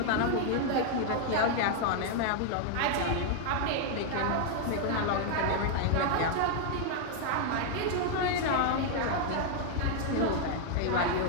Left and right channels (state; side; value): different; both; correlation 0.00